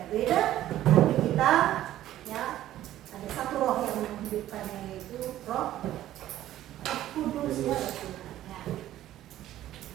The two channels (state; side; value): quieter; left; 13.4 dB